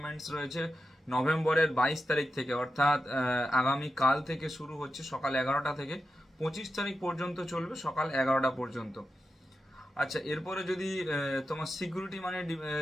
রয়েছে নভেম্বরের 22 তারিখ থেকে, অর্থাৎ আগামী কাল থেকে শুরু হচ্ছে সকাল 11টা থেকে 25 তারিখ পর্যন্ত চলবে সকাল 11টা পর্যন্ত। আচ্ছা, এরপরে যদি তোমার সিকিউরিটি মানি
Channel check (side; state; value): both; normal; correlation 0.90